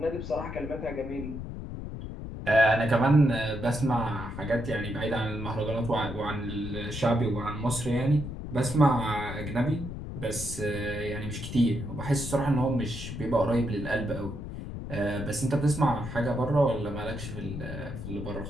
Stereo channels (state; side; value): noise; left; rumble, 8 dB below the sound